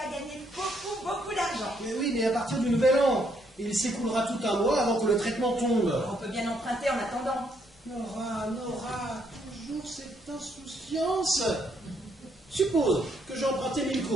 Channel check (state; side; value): normal; both; correlation 0.72